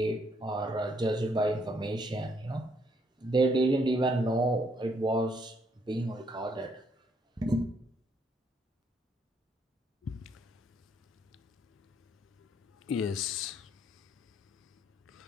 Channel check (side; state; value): both; normal; correlation 0.70